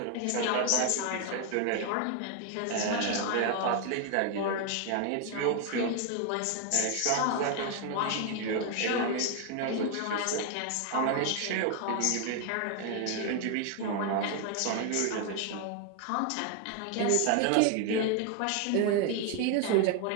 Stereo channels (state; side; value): different; both; correlation 0.01